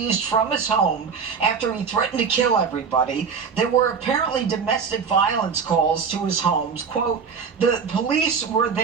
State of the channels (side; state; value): left; quieter; 6.0 dB